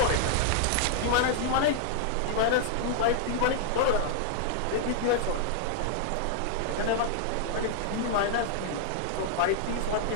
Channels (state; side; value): different; both; correlation 0.00